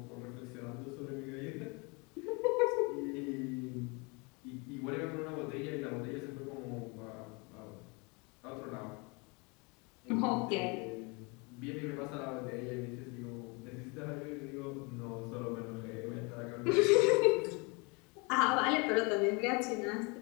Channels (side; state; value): right; quieter; 29.8 dB